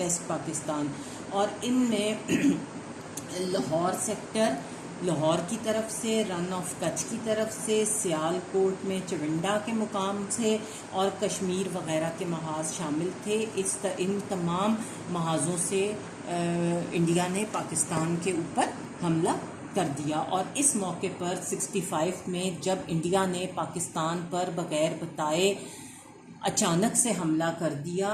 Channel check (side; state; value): both; identical; correlation 1.00